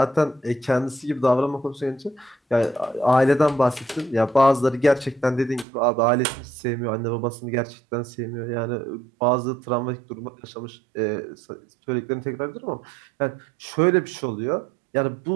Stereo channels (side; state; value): left; drops out; at 5.7 s